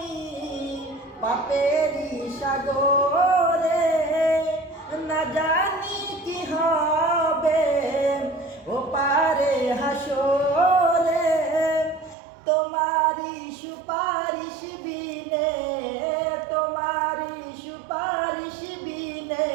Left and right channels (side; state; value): left; drops out; at 12.2 s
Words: পাপেরি সাগরে, না জানি কি হবে ও পারে হাসরে। তোমারি সুপারিশ বিনে, তোমারি সুপারিশ বিনে